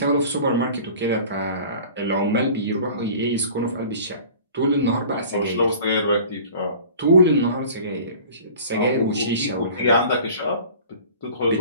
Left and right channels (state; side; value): inverted; both; correlation -0.44